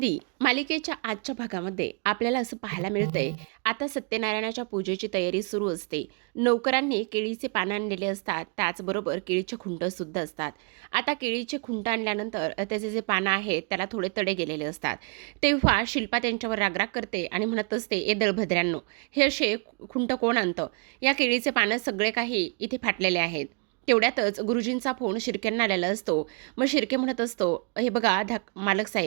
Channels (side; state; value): left; quieter; 36.2 dB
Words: मालिकेच्या आजच्या भागामध्ये आपल्याला असं पाहायला मिळतंय, आता सत्यनारायणाच्या पूजेची तयारी सुरू असते. नौकरांनी केळीचे पानं आणलेले असतात, त्याचबरोबर केळीचे खुंटसुद्धा असतात. आता केळीचे खुंट आणल्यानंतर त्याचे जे पानं आहेत त्याला थोडे तडे गेलेले असतात. तेव्हा शिल्पा त्यांच्यावर रागराग करते आणि म्हणत असते, ए दळभद्र्यांनो, हे असे खुंट कोण आणतं? या केळीचे पानं सगळे काही इथे फाटलेले आहेत. तेवढ्यातच गुरुजींचा फोन शिर्क्यांना आलेला असतो. मग शिर्के म्हणत असतो, हे बघा मालक